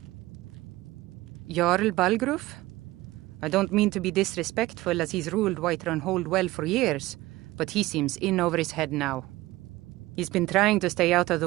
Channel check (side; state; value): left; quieter; 18.4 dB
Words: Jarl Balgruf? I don't mean to be disrespectful, as he's ruled Whiterun Hold well for years, but he seems in over his head now. He's been trying to stay out of